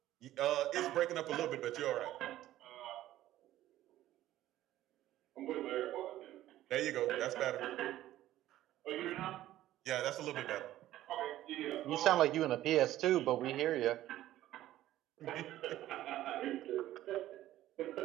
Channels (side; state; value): left; quieter; 14.1 dB